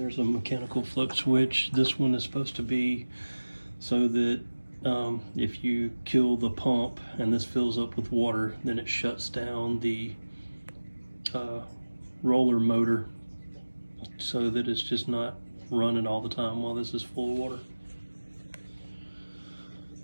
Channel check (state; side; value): inverted; both; correlation -1.00